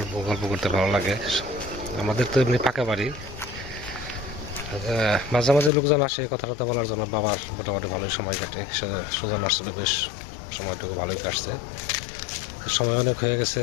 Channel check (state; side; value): drops out; right; at 5.7 s